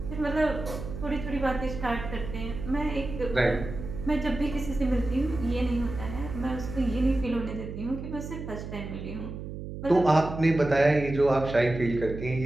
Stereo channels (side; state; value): right; noise; hum, 9 dB below the sound